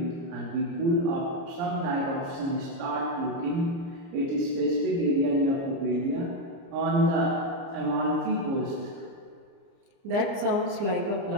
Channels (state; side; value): late; left; 29 ms